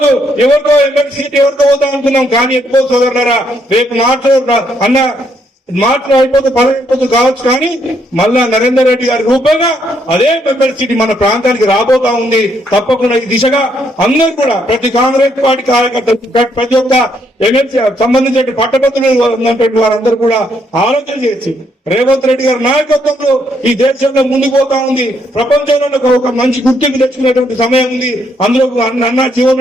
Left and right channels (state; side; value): normal; both; correlation 0.73